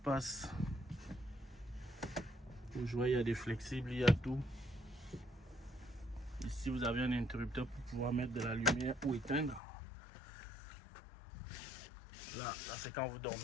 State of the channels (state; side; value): drops out; right; at 9.6 s